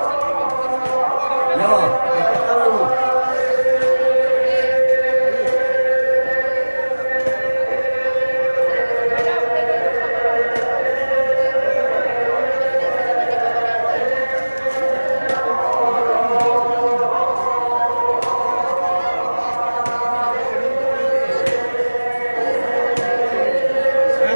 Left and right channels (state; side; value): inverted; both; correlation -1.00